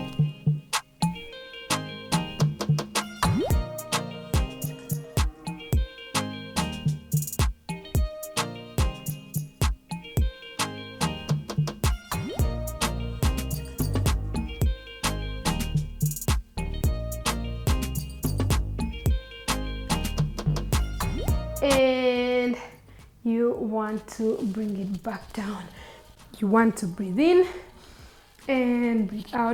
And you want to bring it back down. You want to breathe in and breathe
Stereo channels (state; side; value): identical; both; correlation 1.00